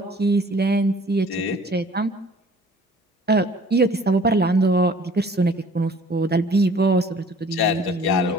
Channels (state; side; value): normal; both; correlation 0.52